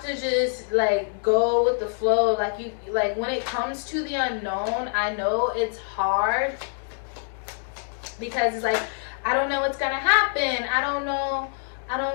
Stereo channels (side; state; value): right; silent; digital silence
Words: to just like go with the flow. Like when it comes to the unknown, I know it's hard, because it's like, I don't know what's gonna happen. I don't know